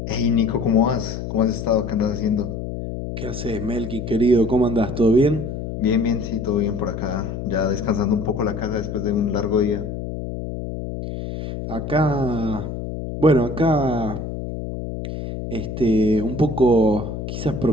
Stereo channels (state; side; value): noise; left; hum, 6 dB below the sound